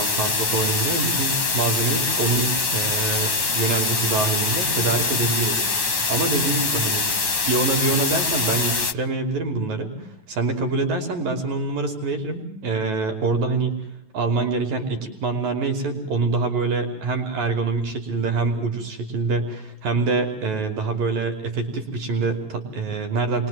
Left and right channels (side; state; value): left; late; 9.3 ms